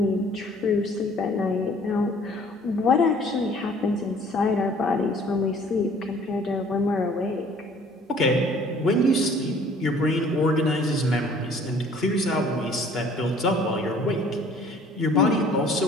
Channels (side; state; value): both; normal; correlation 0.54